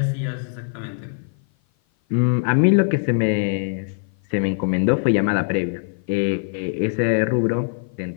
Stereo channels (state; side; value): silent; right; 55 dB below the other